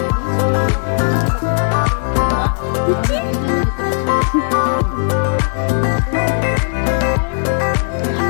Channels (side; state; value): right; silent; digital silence